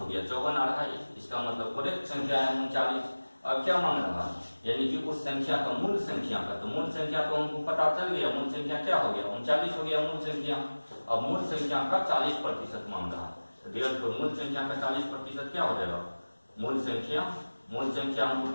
गया, 54 आ रहा है। इसका मतलब करेक्ट संख्या है 39। अब क्या मांग रहा है, यानी कि उस संख्या का मूल संख्या का, तो मूल संख्या तो हमको पता चल गया, मूल संख्या क्या हो गया, 39 हो गया मूल संख्या। अब मूल संख्या का 40% मांग रहा है, तो मूल संख्या का 40% क्या हो जाएगा, मूल संख्या हमको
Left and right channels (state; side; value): inverted; both; correlation -1.00